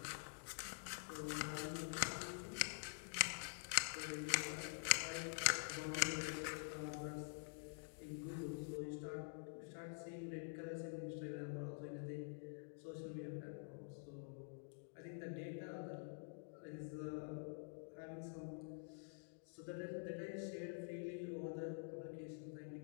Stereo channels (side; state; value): right; silent; digital silence